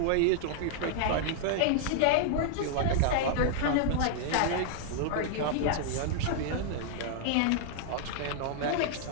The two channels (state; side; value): different; both; correlation -0.01